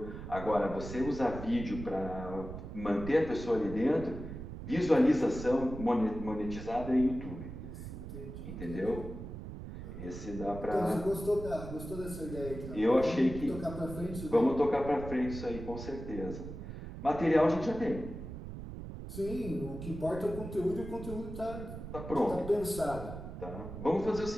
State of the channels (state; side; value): noise; right; rumble, 9 dB below the sound